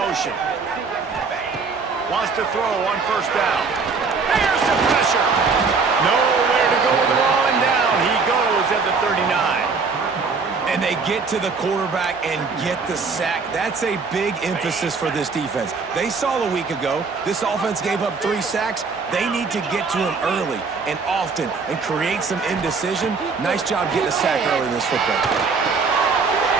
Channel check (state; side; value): quieter; left; 4.8 dB